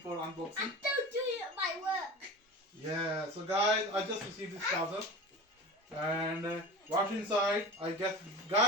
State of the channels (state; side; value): normal; both; correlation 0.34